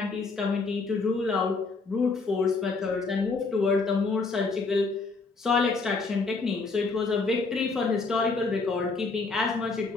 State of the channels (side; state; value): right; quieter; 4.1 dB